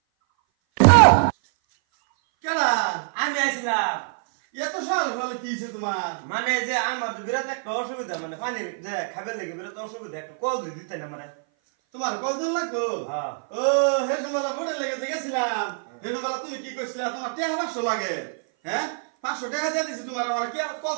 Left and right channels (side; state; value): left; silent; 57 dB below the other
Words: কেডা আমি আইছিলাম। এত সকাল সকালে কি হয়েছে তোমার? মানে যে আমার তো বিরাট একটা অসুবিধা, মানে পানি যে খাবার লেগে বিরাট অসুবিধা, একটা কল দিয়ে দিতে না মানে। তোমার কতদিন লাগতো? হ্যাঁ। ও হেসুমালা বোর্ডে লেগে গেছিলাম। হেসুমালা তুমি কি কইছিলা তোমার টাকা 500 লাগে? হ্যাঁ 500 টাকা দিয়ে দিছি তোমার, আমার কি আর